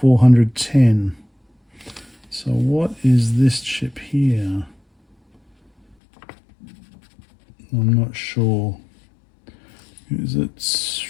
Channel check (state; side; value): drops out; right; at 6.0 s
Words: So what is this chip here? I'm not sure. Is it